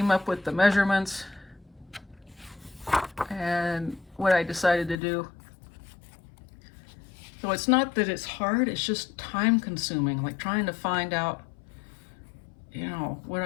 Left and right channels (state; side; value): drops out; right; at 5.0 s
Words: up with the measurements and what I decided to do. So it's not that it's hard, it's just time consuming, like trying to find out, you know, what